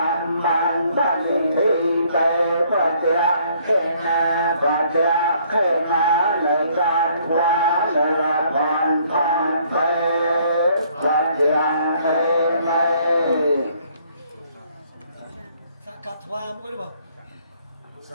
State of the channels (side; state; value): both; inverted; correlation -0.63